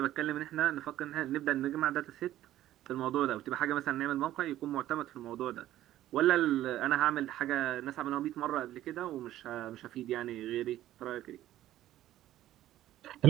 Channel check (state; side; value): quieter; left; 13.6 dB